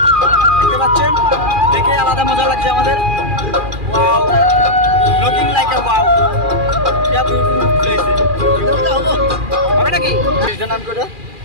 দেখতে পাচ্ছেন। দেখে আলাদা মজা লাগছে আমাদের। ওয়াও, লুকিং লাইক আ ওয়াও, क्या বিউটিফুল প্লেস হবে নাকি? এটার নাম কি? ওটা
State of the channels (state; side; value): late; left; 2.4 ms